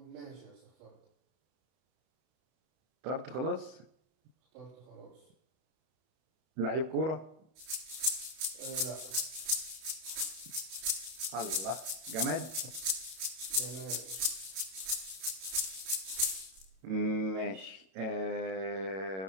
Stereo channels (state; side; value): late; left; 32 ms